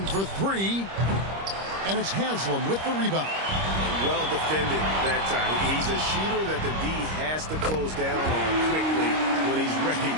for 3. And it's Haslam with the rebound. Well defended that time. He's a shooter that the D has to close down on quickly when he's ready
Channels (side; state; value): left; late; 26 ms